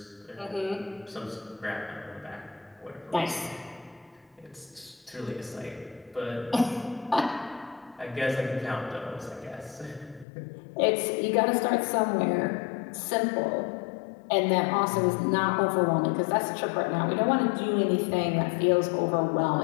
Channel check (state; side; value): drops out; right; at 10.2 s